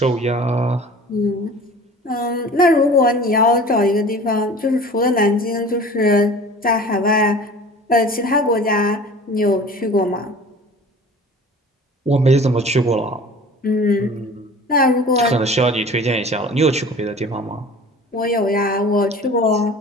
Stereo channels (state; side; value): normal; both; correlation 0.42